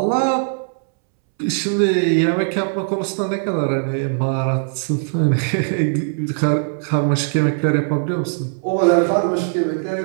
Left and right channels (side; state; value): left; silent; 66 dB below the other